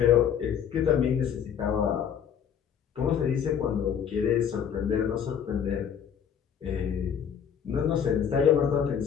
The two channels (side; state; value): right; quieter; 8.1 dB